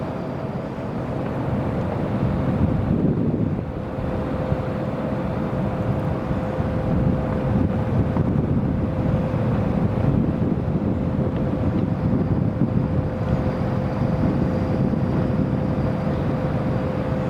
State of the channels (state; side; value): identical; both; correlation 1.00